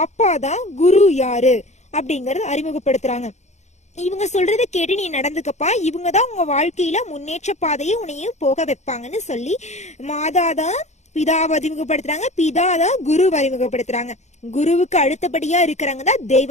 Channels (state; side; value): late; right; 0.33 ms